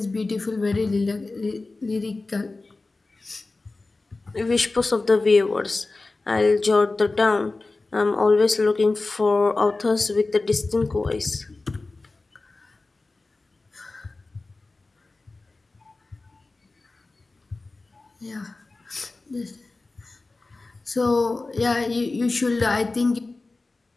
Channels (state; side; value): quieter; right; 3.4 dB